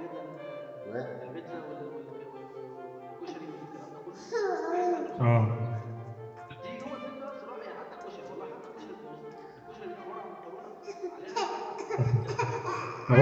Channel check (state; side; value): identical; both; correlation 1.00